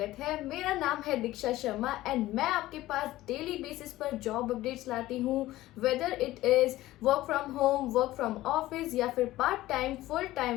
है। मेरा नाम है दीक्षा शर्मा एंड मैं आपके पास डेली बेसिस पर जॉब अपडेट्स लाती हूँ, whether it is work from home, work from office या फिर part time, full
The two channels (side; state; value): right; quieter; 16.3 dB